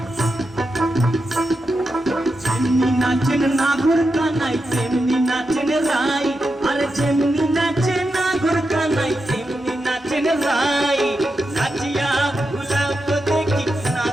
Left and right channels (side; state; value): both; normal; correlation 0.88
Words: नाचेन नागोर कानाई तेमनी नाचेन राई अरे जेमनी नाचे नागोर कानाई तेमनी नाचेन राई नाचिया भूलाओ तो देखी